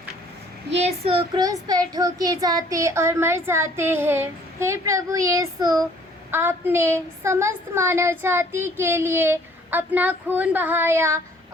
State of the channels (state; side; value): normal; both; correlation 0.57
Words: यीशु क्रूस पर ठोके जाते और मर जाते हैं। हे प्रभु यीशु, आपने समस्त मानव जाति के लिए अपना खून बहाया